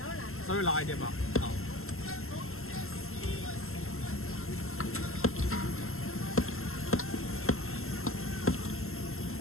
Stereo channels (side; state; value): right; late; 0.62 ms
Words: 稍微辣一点吧。好。